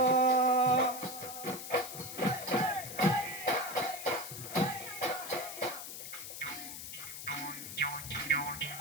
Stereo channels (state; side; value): noise; left; hiss, 9 dB below the sound